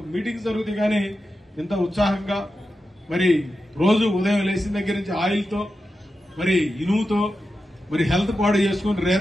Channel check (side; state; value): both; normal; correlation 0.90